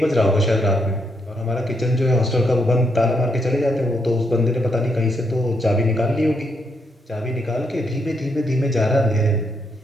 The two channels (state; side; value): normal; both; correlation 0.77